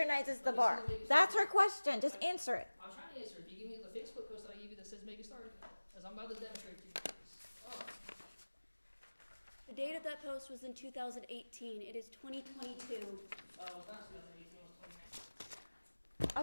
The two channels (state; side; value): inverted; both; correlation -1.00